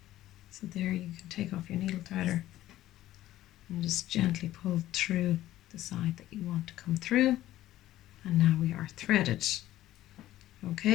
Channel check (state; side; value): quieter; right; 14.4 dB